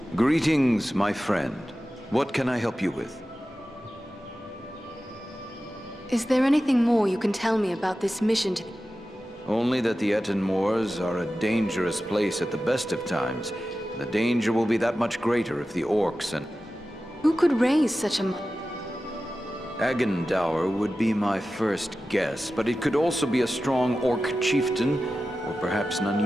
Greetings, my friend. What can I help you with? Is there anything more you can tell me about this mission to... Only that the Ettenmoors are a dangerous place at the best of times. The danger will be that much greater if the orcs and... Who could raise such a... Agendour would be my first guess, but it could also be a strong orc chieftain, or perhaps an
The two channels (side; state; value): both; normal; correlation 0.94